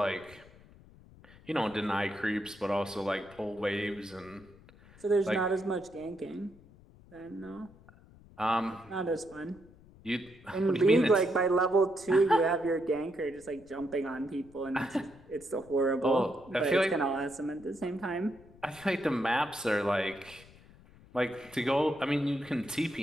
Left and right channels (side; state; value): left; noise; rumble, 24 dB below the sound